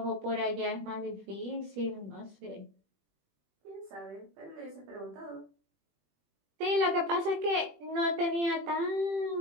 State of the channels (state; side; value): late; left; 21 ms